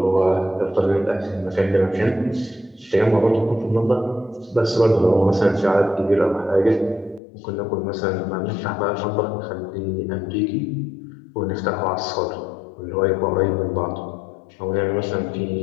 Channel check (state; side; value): drops out; right; at 7.2 s